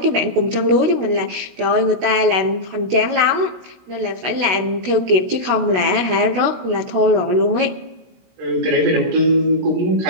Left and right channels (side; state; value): left; late; 17 ms